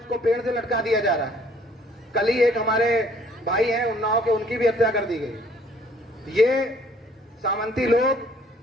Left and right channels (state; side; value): normal; both; correlation 0.59